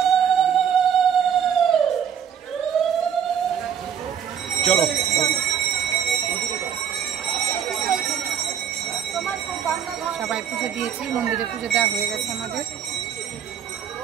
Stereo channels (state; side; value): quieter; left; 8.3 dB